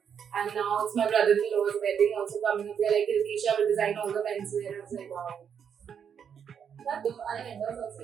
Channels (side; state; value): left; quieter; 7.7 dB